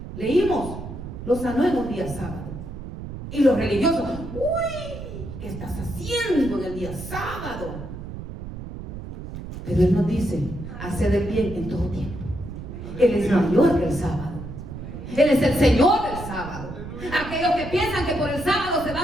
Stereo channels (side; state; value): right; noise; rumble, 10 dB below the sound